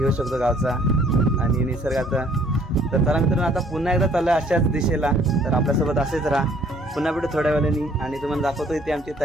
शकतो गावचा आणि निसर्गाचा. तर चला मित्रांनो, आता पुन्हा एकदा चाललं अशाच दिशेला. तर आपल्यासोबत असेच राहा. पुन्हा भेटू थोड्या वेळाने आणि तुम्हाला दाखवतो इथे आमची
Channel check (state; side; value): normal; both; correlation 0.60